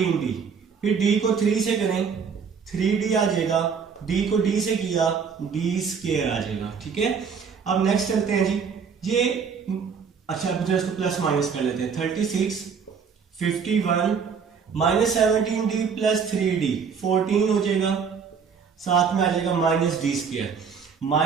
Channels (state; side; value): quieter; left; 6.2 dB